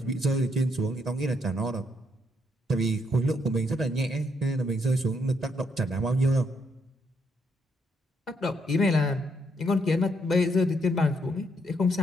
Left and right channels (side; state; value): both; normal; correlation 0.74